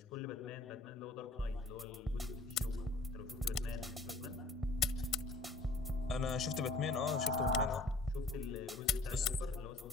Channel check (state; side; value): quieter; right; 3.2 dB